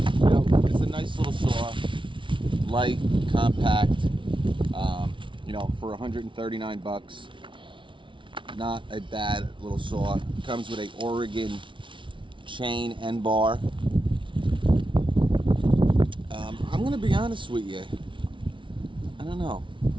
it's a nice little saw. Light, compact, for 139 bucks. Not a bad little saw. Comes with a Oregon chain and bar. I'm going to be honest with you. I don't know.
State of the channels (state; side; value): late; left; 0.24 ms